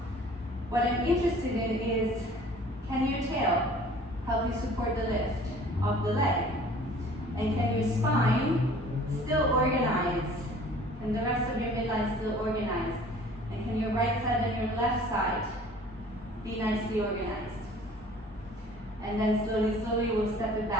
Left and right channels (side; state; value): both; normal; correlation 0.50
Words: What I'm interested in is, can your tail help you support the lift of the leg? And can your spine still organize? And the rest of your midline still organize? And can your right side and your left side be nicely organized? And then slowly, slowly we'll step it